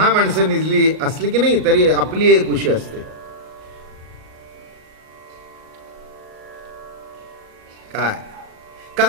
माणसं निजली असली की नाही तरी आपली एक उशी असते. काय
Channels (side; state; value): left; late; 38 ms